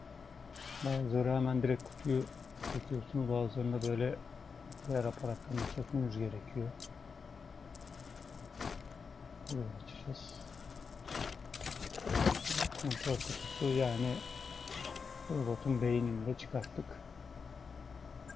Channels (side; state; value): right; quieter; 5.4 dB